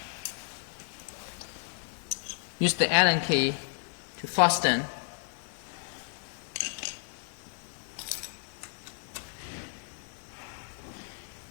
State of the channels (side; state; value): right; silent; 56 dB below the other